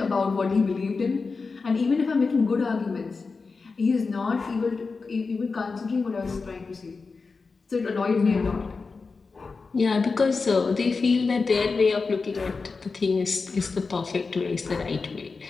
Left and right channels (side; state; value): right; quieter; 4.4 dB